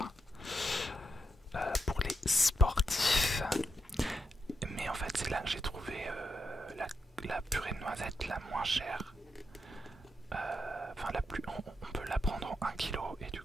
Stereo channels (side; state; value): both; normal; correlation 0.84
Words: Pour les sportifs. Mais en fait, c'est là que j'ai trouvé la purée de noisettes la moins chère. Enfin, on peut la prendre en 1 kg et du